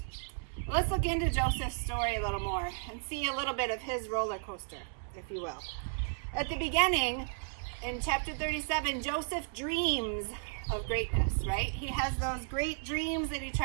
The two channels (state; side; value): silent; left; digital silence